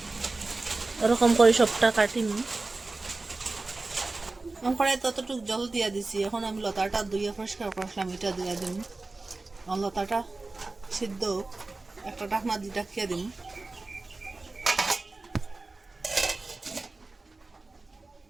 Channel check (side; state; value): left; quieter; 3.4 dB